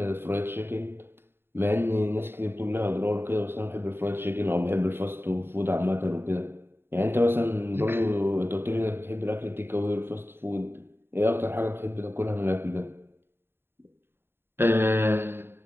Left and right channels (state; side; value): late; left; 0.11 ms